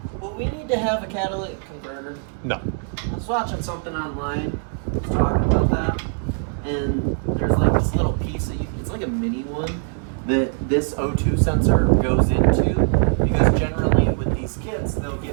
will we need to have a catalytic converter? No. I was watching something online, talking about that, and there's like this little piece that it's like a mini one that this O2 sensor goes into, because generally with these kits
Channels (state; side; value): silent; left; 55 dB below the other